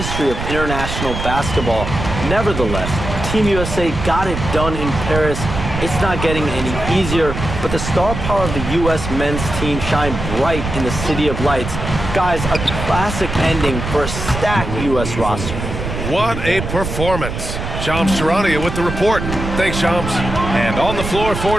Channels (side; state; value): right; noise; rumble, 5 dB below the sound